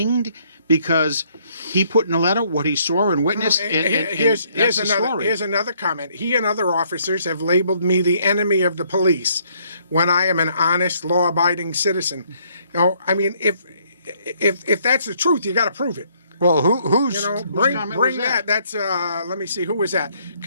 because he put in a letter what he saw and witnessed. And Here's that's the another story. here's another comment. He and other officers have labeled me the enemy of the police when I am an honest, law-abiding citizen. I mean, if that's the truth, you got to prove it. Well, who's Bring comment was that? that. That's let me see, who was that?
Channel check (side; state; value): both; inverted; correlation -0.67